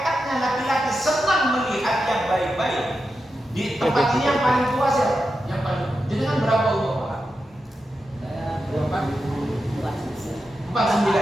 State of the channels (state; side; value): normal; both; correlation 0.89